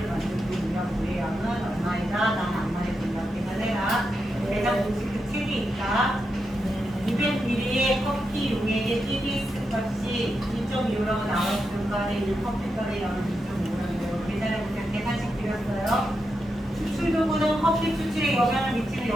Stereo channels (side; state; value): both; normal; correlation 0.86